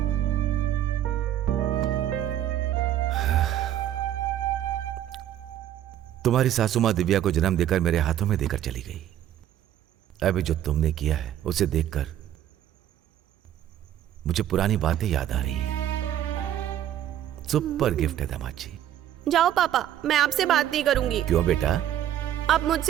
तुम्हारी सासू माँ दिव्या को जन्म देकर मेरे हाथों में देकर चली गई। अभी जो तुमने किया है उसे देखकर मुझे पुरानी बातें याद आ रही हैं। सुपर गिफ्ट है दामाद जी। जाओ पापा, मैं आपसे बात नहीं करूंगी। क्यों बेटा? आप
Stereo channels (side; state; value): left; quieter; 11.5 dB